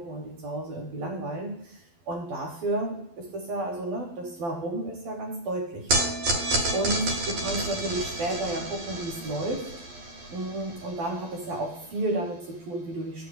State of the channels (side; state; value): left; late; 12 ms